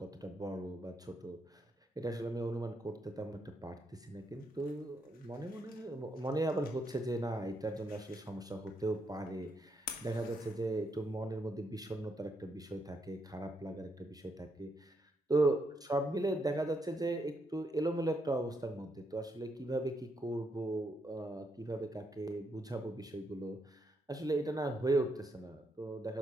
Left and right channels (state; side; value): normal; both; correlation 0.78